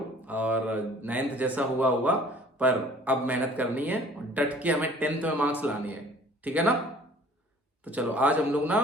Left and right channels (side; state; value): both; normal; correlation 0.51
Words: और 9th जैसा हुआ हुआ, पर अब मेहनत करनी है और डट के हमें 10th में मार्क्स लाने हैं, ठीक है ना। तो चलो आज हम लोग ना